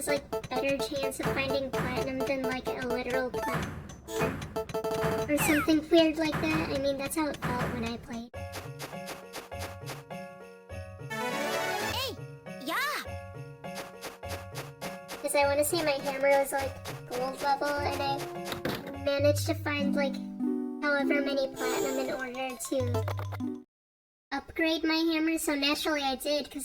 like better chance of finding platinum than like a literal platinum. Or something weird like that. I mean, that's how it felt when I played. Because I want to say my hammer was like gold level, and I managed to find like however many platinum in order to upgrade my hammer. So naturally I did,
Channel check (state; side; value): identical; both; correlation 1.00